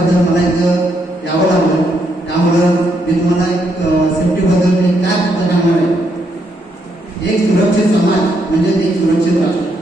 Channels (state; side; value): normal; both; correlation 0.76